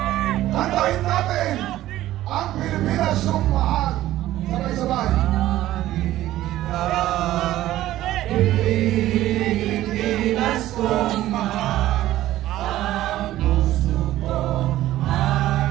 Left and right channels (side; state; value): left; quieter; 14.5 dB